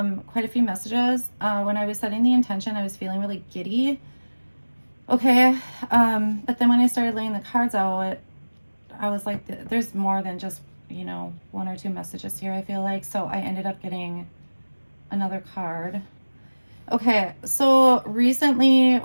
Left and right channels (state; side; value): inverted; both; correlation -1.00